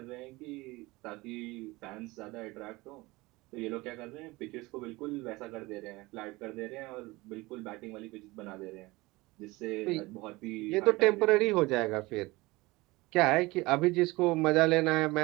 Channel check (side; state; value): left; quieter; 21.7 dB